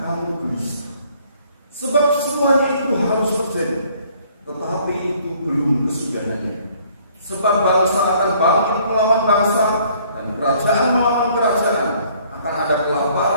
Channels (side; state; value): both; inverted; correlation -0.60